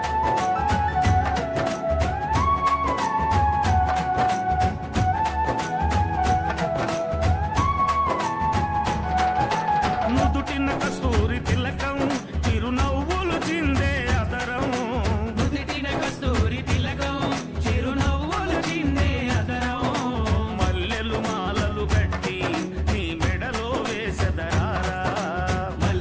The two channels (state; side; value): identical; both; correlation 1.00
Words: నుదుటిన కస్తూరి తిలకం చిరునవ్వులు చిందే అదరం. నుదిటిన కస్తూరి తిలకం చిరునవ్వులు చిందే అదరం. మల్లెలు మాలలు కట్టి నీ మెడలో వేసెదరారా.